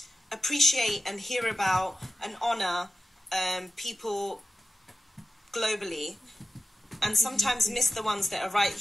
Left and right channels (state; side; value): normal; both; correlation 0.92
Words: appreciate and hear about and honour people globally, and sometimes miss the ones that are right